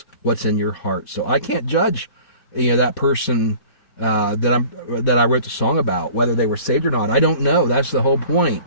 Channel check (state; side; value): late; right; 4.1 ms